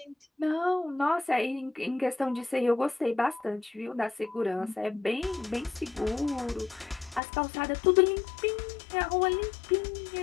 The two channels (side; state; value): right; drops out; at 7.2 s